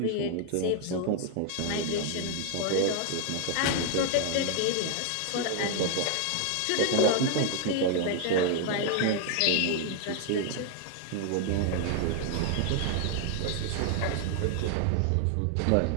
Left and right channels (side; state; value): both; different; correlation 0.00